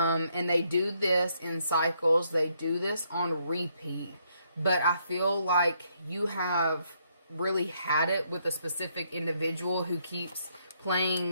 they do this in cycles. They do this on repeat. But I feel like you have really had it with a specific individual who keeps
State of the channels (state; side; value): inverted; both; correlation -0.73